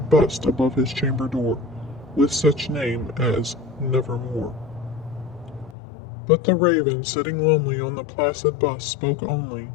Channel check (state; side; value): drops out; right; at 5.8 s